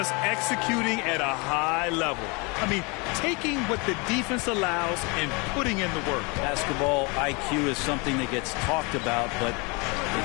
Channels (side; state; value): right; quieter; 29.4 dB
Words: executing at a high level. I mean, taking what the defense allows and putting in the work. Basketball IQ is something that gets talked about, but